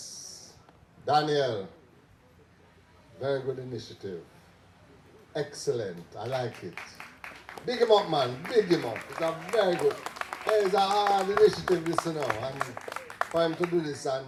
Daniel. Very good initiative. Excellent. I like it. Big him up, man. Big him up. It's a very good. It's a hard initiative, this, you know. And for him to do this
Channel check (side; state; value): both; identical; correlation 1.00